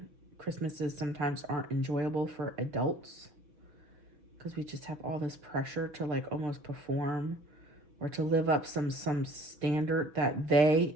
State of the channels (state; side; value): late; left; 6.3 ms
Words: Christmases sometimes aren't enjoyable for adults, because we just have all this pressure to like almost perform or to live up some standard that they,